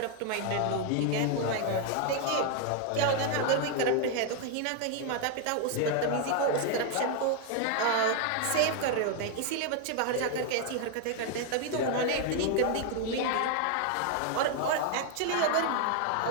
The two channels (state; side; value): different; both; correlation 0.00